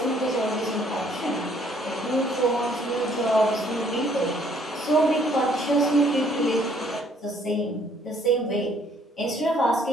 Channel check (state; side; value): normal; both; correlation 0.63